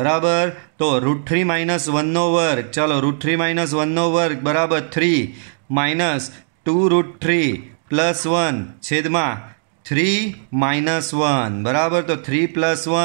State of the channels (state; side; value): silent; left; digital silence